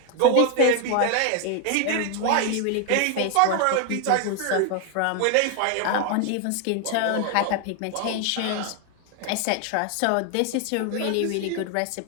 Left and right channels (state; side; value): different; both; correlation 0.01